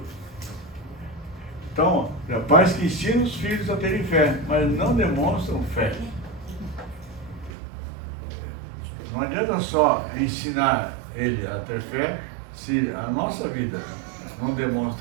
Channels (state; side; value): drops out; left; at 7.5 s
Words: Então, pais que ensinam os filhos a terem fé, mas não demonstram fé. Não adianta só ensinar ele a ter fé se a nossa vida não